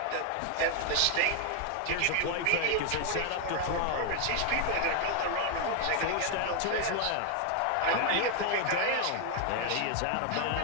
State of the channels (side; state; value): both; different; correlation 0.00